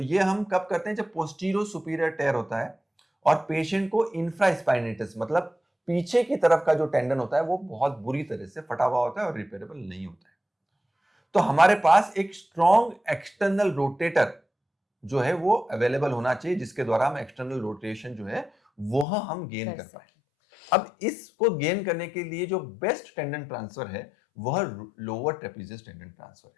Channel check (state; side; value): drops out; right; at 19.1 s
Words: हम कब करते हैं जब पोस्टीरियर सुपीरियर टेयर होता है और पेशेंट को इंफ्रास्पाइनेटस मतलब पीछे की तरफ का जो टेंडन होता है वो बहुत बुरी तरह से फटा हुआ होता है और रिपेयरेबल नहीं होता है। तो हमारे पास एक स्ट्रॉन्ग एक्सटर्नल रोटेटर जो है वो अवेलेबल होना चाहिए जिसके द्वारा हम एक्सटर्नल रोटेशन जो है वह हम गेन कर कर पाए। सके। अब इसको गेन करने के लिए जो बेस्ट टेंडन ट्रांसफर है वह लोअर ट्रेपेजियस टेंडन ट्रांसफर